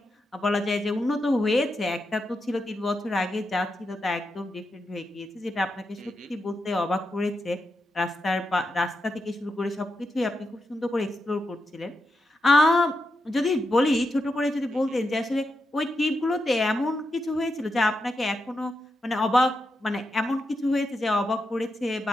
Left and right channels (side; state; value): both; normal; correlation 0.86